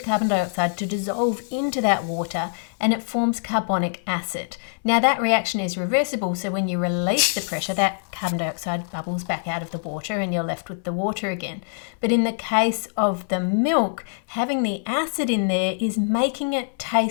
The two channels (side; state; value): right; silent; 63 dB below the other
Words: dioxide to dissolve into that water and it forms carbonic acid. Now that reaction is reversible, so when you release the pressure, that carbon dioxide bubbles back out of the water and you're left with the water again. But in the case of the milk, having the acid in there is making it